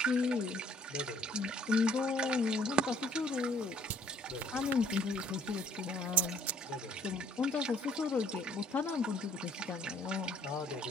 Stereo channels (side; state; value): both; normal; correlation 0.60